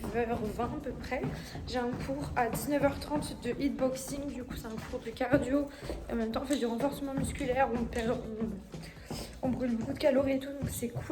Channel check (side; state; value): both; identical; correlation 1.00